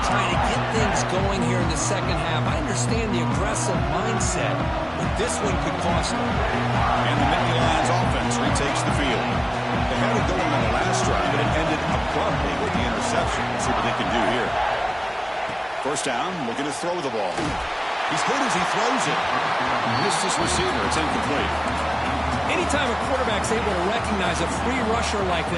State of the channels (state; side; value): identical; both; correlation 1.00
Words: trying to get things going here in the second half. I understand the aggressive mindset, but this one could cost them. And the Nittany Lions offense retakes the field. They had it going on the last drive, but it ended abruptly with the interception. Let's see what they can do here. First down, looking to throw the ball. He's hit as he throws it. Missed his receiver. It's incomplete. Anytime a quarterback's able to recognize a free rusher like